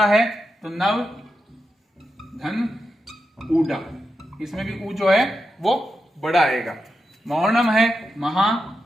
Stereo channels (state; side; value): normal; both; correlation 0.87